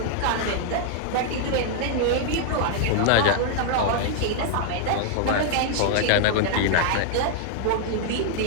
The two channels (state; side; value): different; both; correlation -0.01